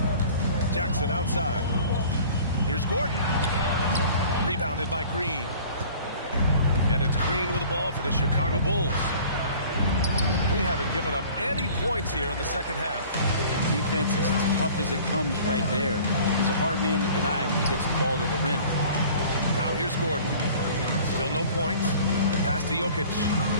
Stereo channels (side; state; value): both; inverted; correlation -0.47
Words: Jackson outside. Here's Gordon. Rebounded by Green. And it's Green with the ball for the Chicago Bulls. They haven't given up any points here in the second half. Defense is as tough as it comes right there. He's a hard man to deny when he gets the ball to the rim. Now here's Gordon. Still no points. Pass to Jokic.